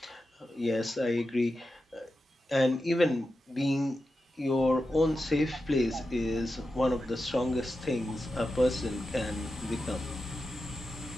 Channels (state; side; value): normal; both; correlation 0.90